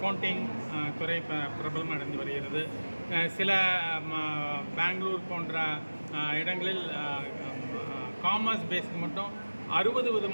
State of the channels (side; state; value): both; inverted; correlation -1.00